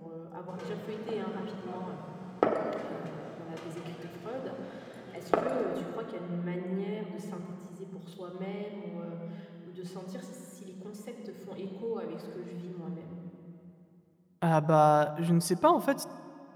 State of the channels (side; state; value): both; identical; correlation 1.00